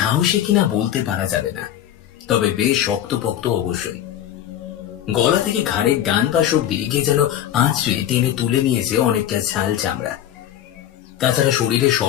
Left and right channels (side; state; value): right; quieter; 11.3 dB